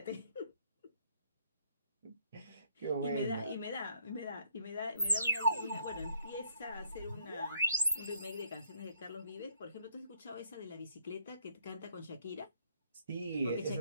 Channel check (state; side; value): inverted; both; correlation -0.65